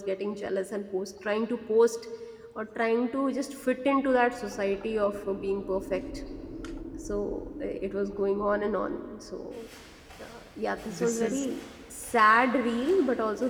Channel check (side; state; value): both; identical; correlation 1.00